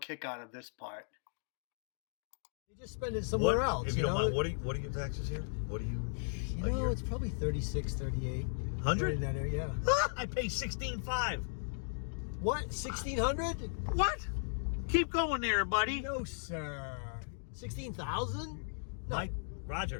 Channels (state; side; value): silent; right; digital silence